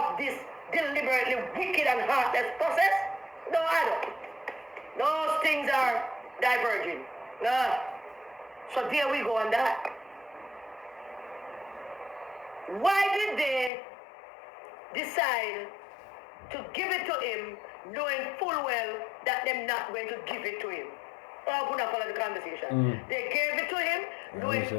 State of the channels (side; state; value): right; drops out; at 13.7 s